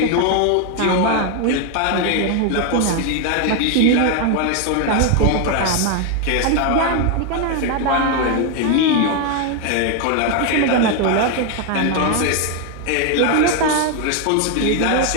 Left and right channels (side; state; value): both; different; correlation 0.01